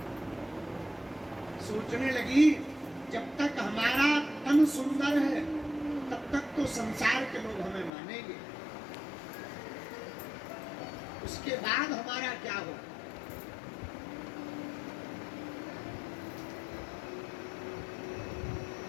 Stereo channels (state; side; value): drops out; right; at 7.9 s